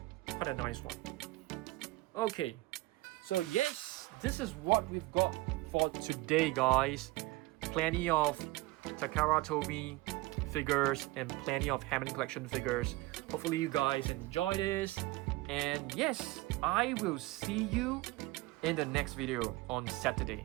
Quite a nice one. Okay, so yes, this is what we've got for today, guys. Plenty of Takara Tomy figures and plenty of Hammond Collection figures. Hopefully you guys enjoy this. And yes, I will see you in the next video on Saturday.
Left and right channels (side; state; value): left; quieter; 20.6 dB